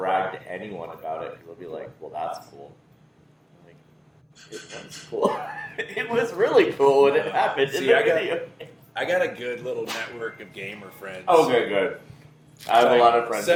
to anyone about it, because they'll be like, well, that's cool. I'm like, it was cool. It was really cool when it happened. See, in the I got- video. I got a good little network of gamer friends. Oh, good. I have a lot of friends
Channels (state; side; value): identical; both; correlation 1.00